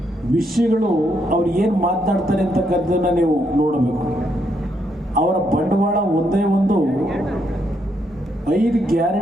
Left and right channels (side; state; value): both; normal; correlation 0.76